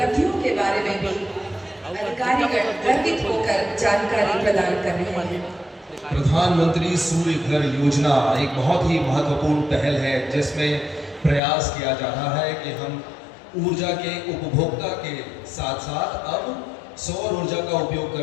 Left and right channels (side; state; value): right; drops out; at 11.4 s